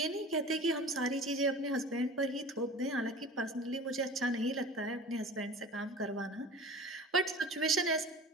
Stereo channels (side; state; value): both; normal; correlation 0.39